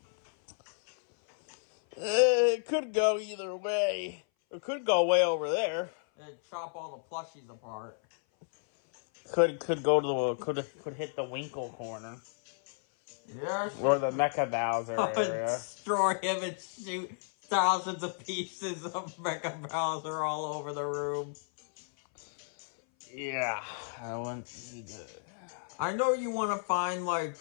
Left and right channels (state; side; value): silent; right; 56 dB below the other